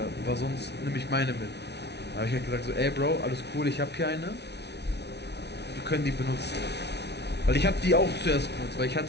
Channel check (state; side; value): late; right; 0.49 ms